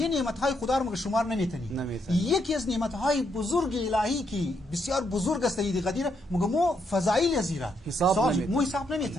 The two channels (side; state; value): both; normal; correlation 0.77